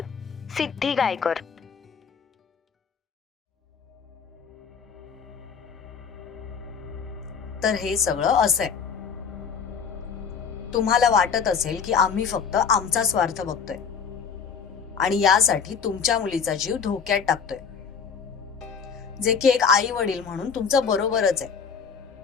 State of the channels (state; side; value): quieter; right; 6.3 dB